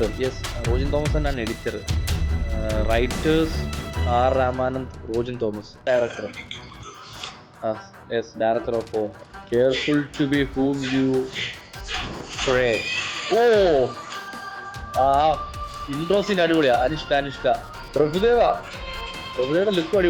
യെസ്, റോജിൻ തോമസ് തന്നെയാണ് editor. Writers R Ramanand, Rojin Thomas director. Yes, director of careful to be whom you pray. ഓ ആ ഇൻട്രോസിന് അടിപൊളിയാ. അനുഷ്ക പ്രഭുദേവയുടെ ലുക്കും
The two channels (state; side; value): identical; both; correlation 1.00